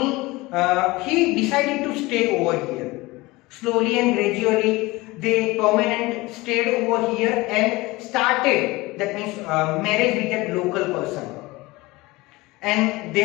he decided to stay over here. Slowly and gradually they permanent stayed over here and started, that means marriage with that local person, and they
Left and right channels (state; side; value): quieter; right; 21.4 dB